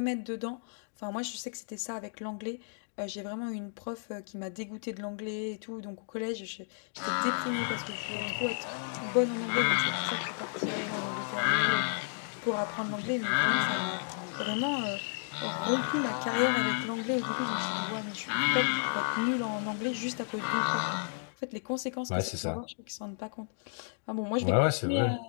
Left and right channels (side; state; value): right; silent; digital silence